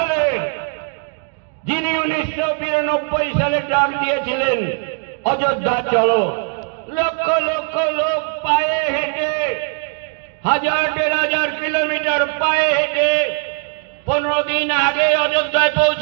যিনি 1992 সালে ডাক দিয়েছিলেন অযোধ্যা চলো। লক্ষ লক্ষ লোক পায়ে হেঁটে, 1000-1500 কিলোমিটার পায়ে হেঁটে 15 দিন আগে অযোধ্যায়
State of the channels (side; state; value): left; quieter; 38.3 dB